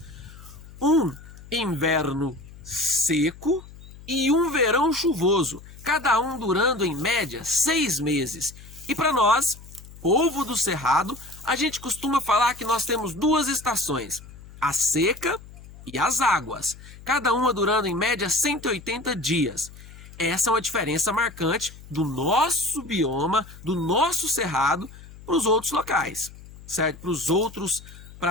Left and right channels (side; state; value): left; noise; hum, 18 dB below the sound